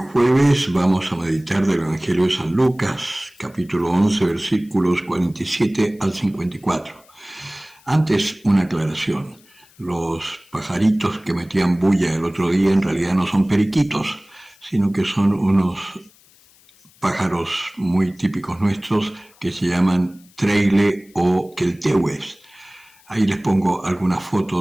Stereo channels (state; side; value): noise; left; hiss, 29 dB below the sound